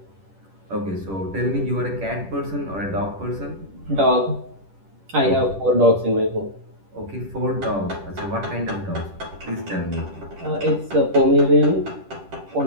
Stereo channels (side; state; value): left; late; 10 ms